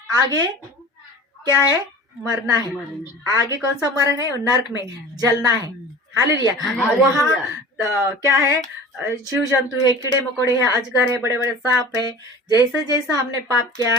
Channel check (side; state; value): both; normal; correlation 0.39